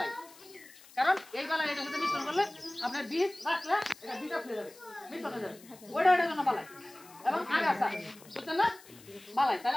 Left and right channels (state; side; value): noise; left; hiss, 22 dB below the sound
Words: কারণ এই বালাই এটার সাথে মিশ্রণ করলে আপনার বীজ রাখলে এটা বীজ ফেলে যাবে, মিশ্রণ হয়ে যাবে, ওইটা এটার জন্য বালাই। এবং আগাছা, বুঝছেন না, বালাই। তাহলে